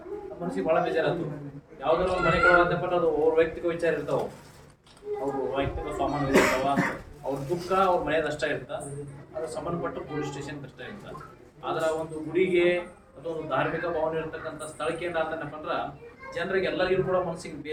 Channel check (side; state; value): both; identical; correlation 1.00